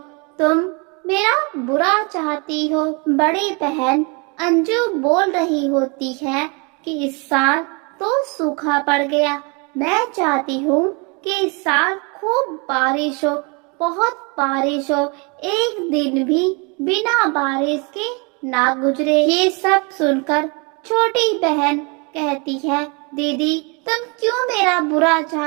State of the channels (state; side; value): quieter; left; 31.7 dB